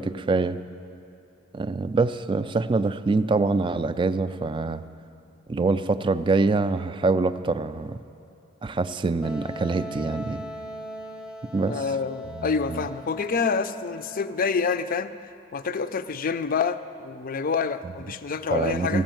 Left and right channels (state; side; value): normal; both; correlation 0.48